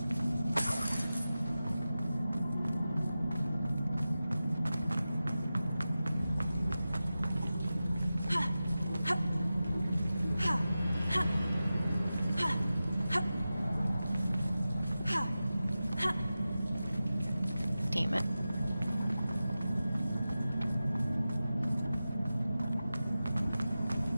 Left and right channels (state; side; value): inverted; both; correlation -0.94